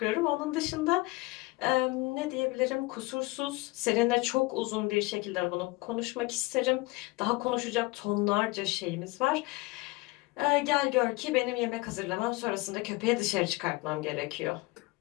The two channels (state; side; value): quieter; right; 22.7 dB